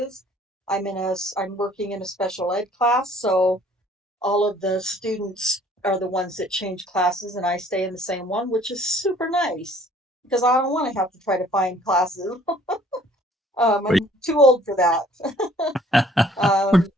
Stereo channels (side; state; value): both; normal; correlation 0.57